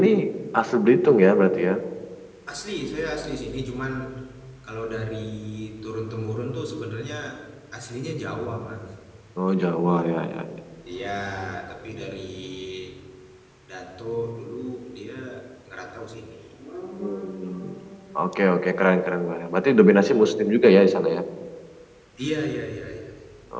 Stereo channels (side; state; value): both; identical; correlation 1.00